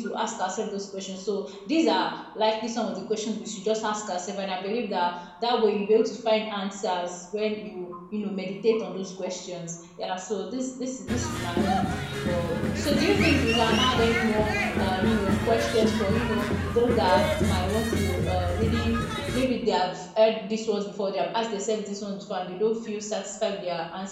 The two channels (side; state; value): both; identical; correlation 1.00